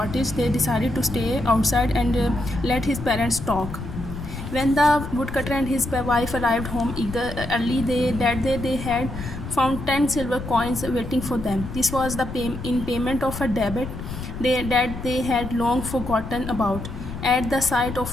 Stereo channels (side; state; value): left; noise; rumble, 8 dB below the sound